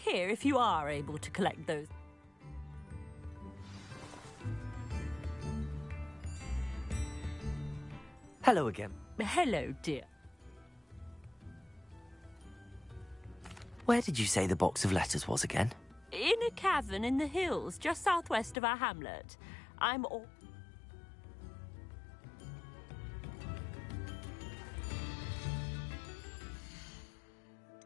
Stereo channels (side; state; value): right; drops out; at 18.6 s